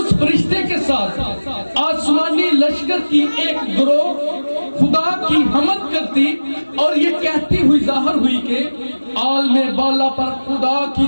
فرشتے کے ساتھ آسمانی لشکر کی ایک گروہ خدا کی حمد کرتی اور یہ کہتی ہوئی ظاہر ہوئی کہ عالم بالا پر خدا کی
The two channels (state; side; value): inverted; both; correlation -1.00